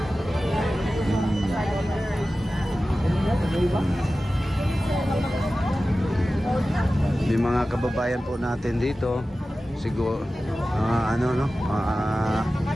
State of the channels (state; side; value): normal; both; correlation 0.95